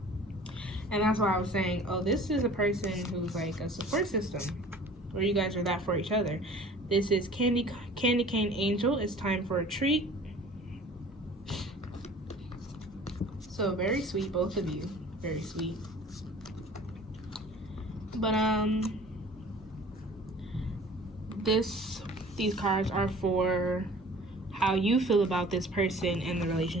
that's why I was saying, oh, this is a person who's like a support system, where you guys are that for each other. This is Candy Cane Angel. It's time for a treat. So very sweet, both of you. Very sweet. But these cards are for how you feel about this person and the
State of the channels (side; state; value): both; normal; correlation 0.47